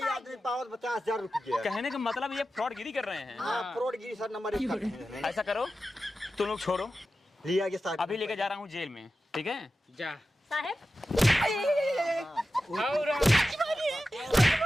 आदमी पावत 50,000 रुपये। कहने का मतलब ये फ्रॉडगिरी कर रहे हैं। हाँ फ्रॉडगिरी सर नंबर 1। ऐसा करो तुम लोग छोड़ो लिया के साथ अभी लेके जा रहा हूँ जेल में ठीक है जा साहब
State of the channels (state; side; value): normal; both; correlation 0.93